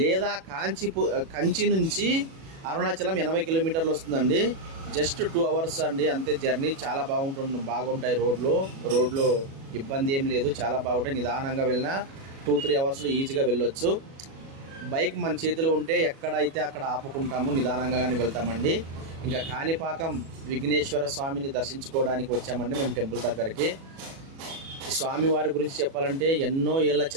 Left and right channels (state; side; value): late; left; 37 ms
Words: కంచి నుంచి అరుణాచలం 80 కిలోమీటర్లు వస్తుందండి. జస్ట్ 2 hours అండి అంతే జర్నీ. చాలా బాగుంటాయి రోడ్లు ఇబ్బంది ఏం లేదు, చాలా బాగుంటాయి. నిదానంగా వెళ్ళినా 2-3 hours ఈజీగా వెళ్ళొచ్చు. బైక్ మన చేతిలో ఉంటే ఎక్కడైతే అక్కడ ఆపుకుంటాము, నిదానంగా కానీ వెళ్తామండి. ఇంకా కాణిపాకం విఘ్నేశ్వర స్వామిని దర్శించుకోవడానికి వచ్చామండి మేము టెంపుల్ దగ్గరికి. స్వామివారి గురించి చెప్పాలంటే ఎన్నో ఏళ్ళ